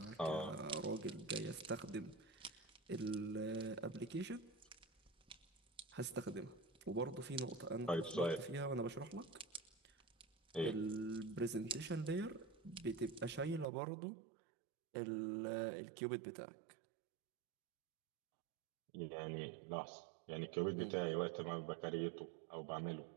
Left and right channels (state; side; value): drops out; left; at 13.7 s